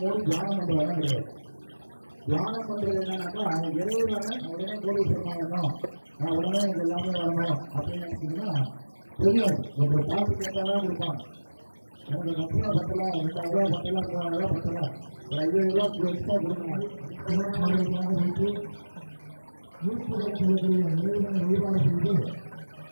மூடி தியானம் பண்ற இடம் கிடையாது. தியானம் பண்றது என்னன்னாக்கா இறைவனை உடனே கோடீஸ்வரனாகணும், உடனே எனக்கு எல்லாமே வரணும் அப்படின்னு நினைச்சீங்கன்னா தெரியாது. ஒருத்தர் பார்த்து கேட்டாதான் கொடுப்பாங்க. எனக்கு தட்சணை பத்தல, 2000 ரூபாய் பத்தல, 3000 ரூபாய் பத்தல, ஒரு 5000 ரூபாய் எக்ஸ்ட்ரா கொடுங்க அப்படின்னு இறைவனை வழிபாடு செய்து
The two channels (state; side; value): inverted; both; correlation -1.00